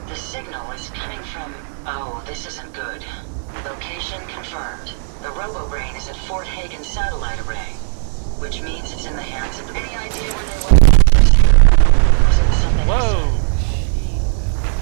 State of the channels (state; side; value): silent; left; digital silence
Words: the signal is coming from... Oh, this isn't good. Location confirmed. The RoboBrain is at Fort Hagen Satellite Array, which means it's in the hands of the... Any idea where they went? Was it something... Whoa!